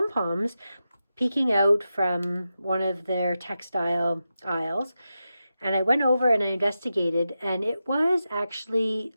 peeking out from one of their textile aisles. And I went over and I investigated, and it was actually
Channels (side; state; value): both; inverted; correlation -0.90